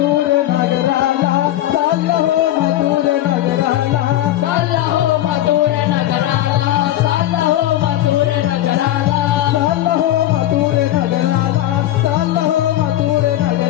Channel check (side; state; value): right; quieter; 13.5 dB